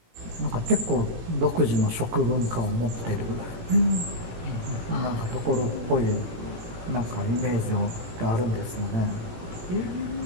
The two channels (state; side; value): late; left; 18 ms